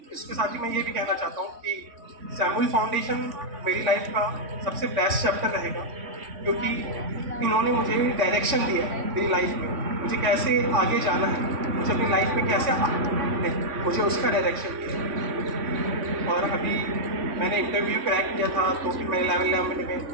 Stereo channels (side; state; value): left; late; 3.5 ms